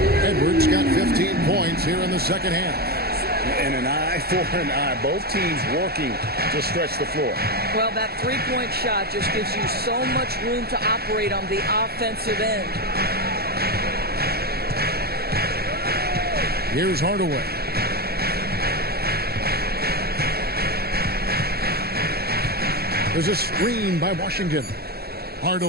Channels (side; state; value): left; late; 0.46 ms